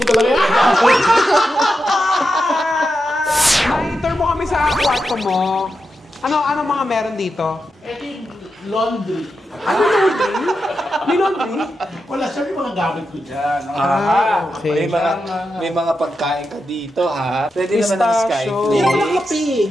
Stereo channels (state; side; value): normal; both; correlation 0.88